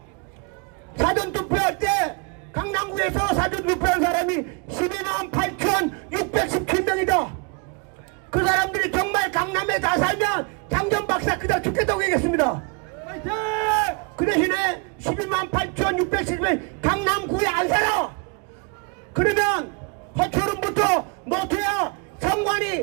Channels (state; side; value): quieter; left; 32.9 dB